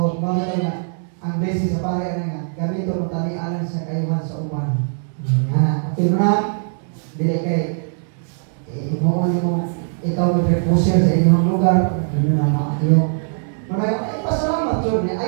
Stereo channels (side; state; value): left; silent; 64 dB below the other